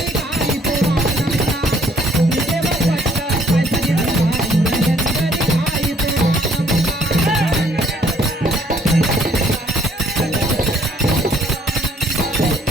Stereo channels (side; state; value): both; normal; correlation 0.63